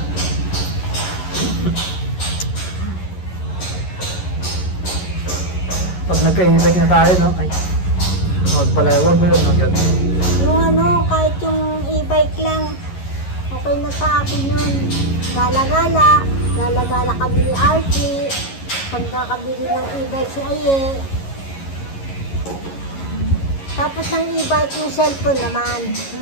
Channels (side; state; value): right; late; 11 ms